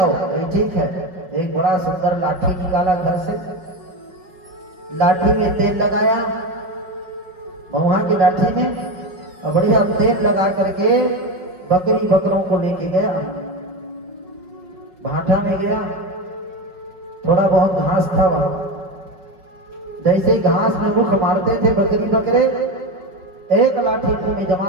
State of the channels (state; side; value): late; left; 5.4 ms